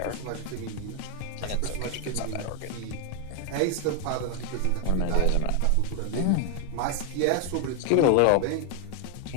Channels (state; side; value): different; both; correlation 0.01